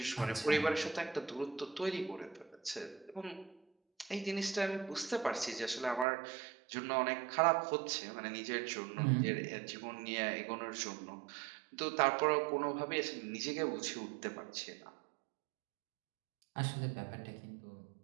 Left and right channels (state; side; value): drops out; left; at 6.1 s